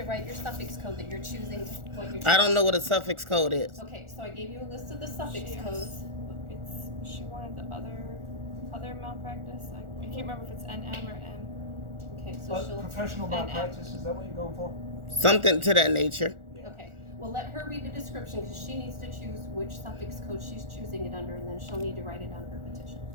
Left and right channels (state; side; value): late; left; 1.4 ms